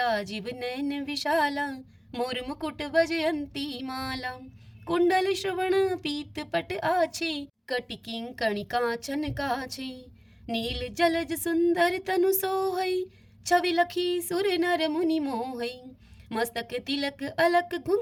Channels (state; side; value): identical; both; correlation 1.00